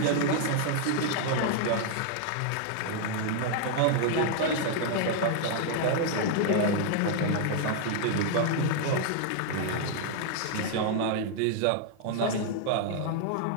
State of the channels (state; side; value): different; both; correlation 0.00